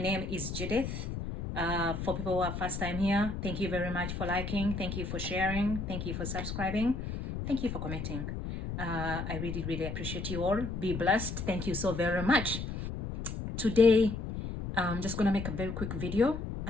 is Judith. For people who are first time here, thank you very much for liking, thank you for sharing, thank you for subscribing, thank you for commenting. I really appreciate you all. Be blessed. Thank you so very much. Today I'm just gonna make a very quick video.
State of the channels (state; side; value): noise; left; rumble, 5 dB below the sound